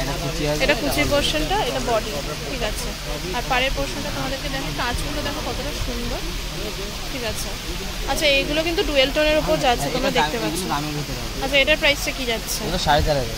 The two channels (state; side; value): identical; both; correlation 1.00